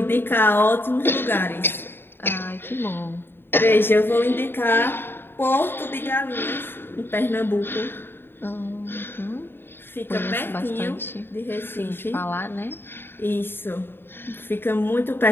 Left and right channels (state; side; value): late; right; 0.10 ms